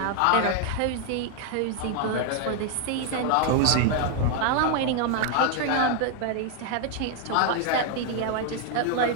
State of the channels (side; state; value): both; different; correlation 0.00